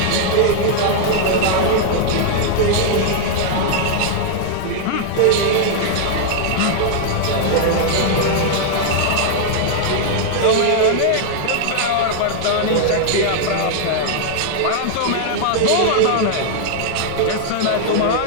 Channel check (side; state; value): both; different; correlation 0.00